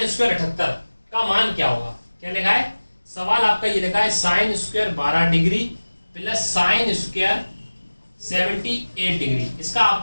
स्क्वायर 78 का मान क्या होगा। क्या लिखा है सवाल आपका, ये लिखा है sine square 12 degree plus sine square 78 degree, इसका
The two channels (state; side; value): inverted; both; correlation -1.00